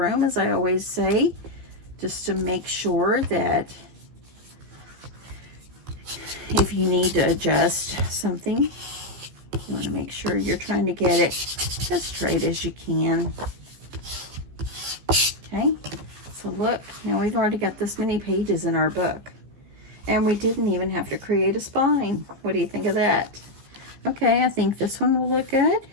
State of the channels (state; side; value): late; left; 15 ms